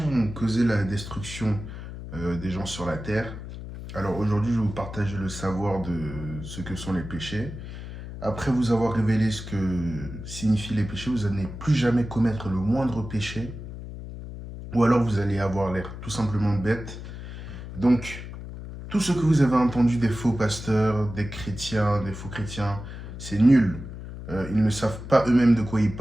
ont causé la destruction des gens sur la terre. Alors aujourd'hui je vais vous partager le savoir de ce que sont les péchés. Après vous avoir révélé ce que signifient les péchés, vous n'allez plus jamais commettre le moindre péché. Ou alors vous allez avoir l'air tout simplement bête. Donc, tout ce que vous avez entendu des faux pasteurs, des chrétiens, des faux chrétiens, c'est nul. Ils ne savent pas eux-mêmes de quoi ils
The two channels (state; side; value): noise; left; hum, 10 dB below the sound